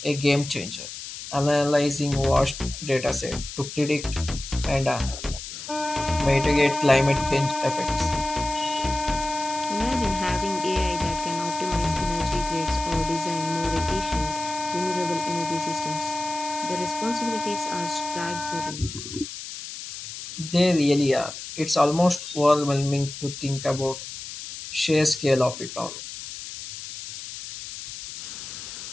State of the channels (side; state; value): left; noise; hiss, 10 dB below the sound